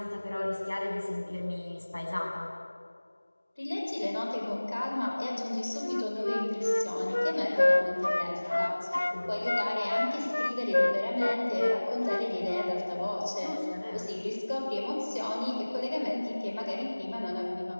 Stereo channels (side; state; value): both; inverted; correlation -1.00